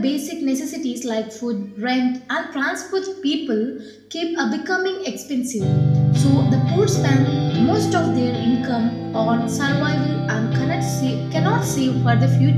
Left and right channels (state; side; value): identical; both; correlation 1.00